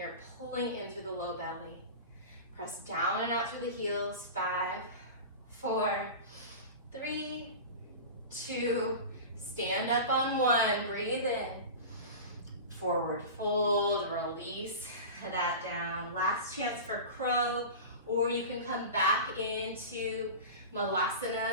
pulling in through the low belly. Press down and out through the heels. 5, 4, 3, 2, stand up on 1, breathe in. Forward fold, release that down. Last chance for crow, or you can come back into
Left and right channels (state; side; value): inverted; both; correlation -0.30